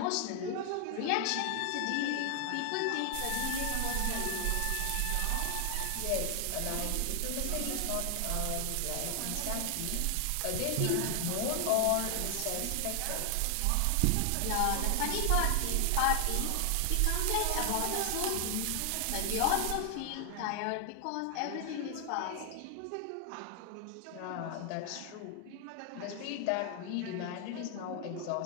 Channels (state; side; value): different; both; correlation 0.00